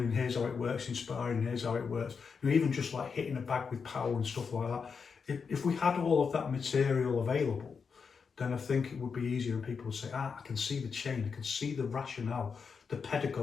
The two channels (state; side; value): quieter; right; 5.7 dB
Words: and here's how it works in sparring, and here's how it works, even just like hitting a bag with power and stuff like that, if we had all of that material available, then I think it would be easier, and people would say, I can see the chain, I can see the rationale, the